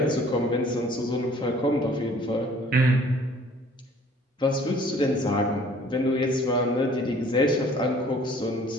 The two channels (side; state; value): both; normal; correlation 0.54